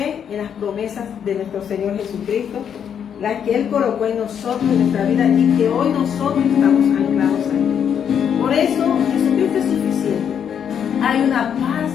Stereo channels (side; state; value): right; quieter; 8.2 dB